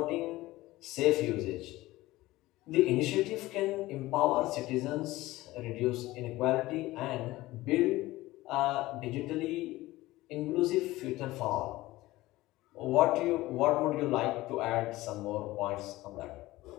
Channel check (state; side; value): quieter; right; 18.1 dB